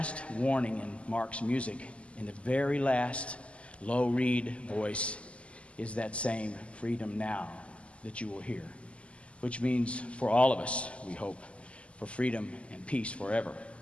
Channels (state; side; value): late; right; 0.058 ms